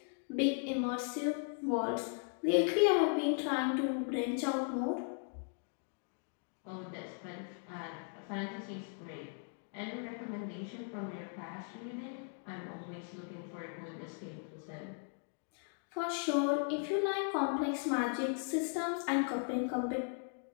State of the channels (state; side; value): silent; right; 53 dB below the other